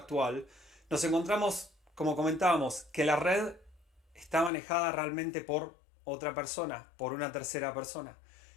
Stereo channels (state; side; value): drops out; right; at 4.5 s